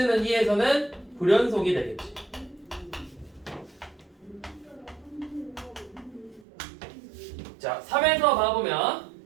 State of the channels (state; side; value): drops out; left; at 6.5 s